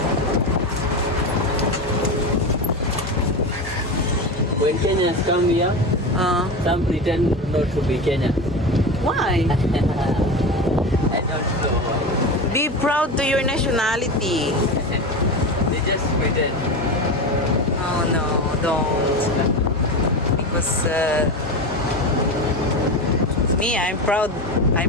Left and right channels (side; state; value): both; normal; correlation 0.22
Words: When Kenyans come here, some pretend not to be Kenyan. Why? I don't know why. Be proud to your nationality. They just pretend. Oh no, don't. Because me, I'm proud. I'm